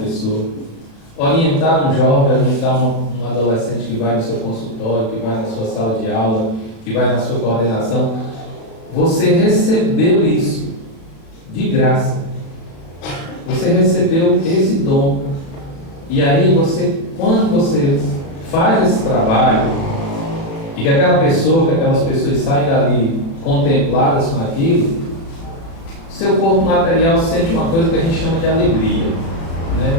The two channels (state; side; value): late; right; 36 ms